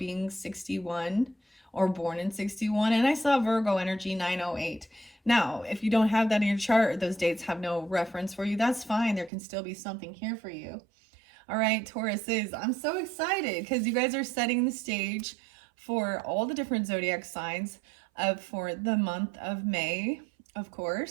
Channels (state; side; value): drops out; left; at 9.3 s